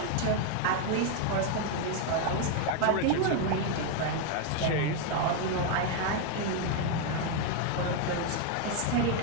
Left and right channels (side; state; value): both; different; correlation 0.01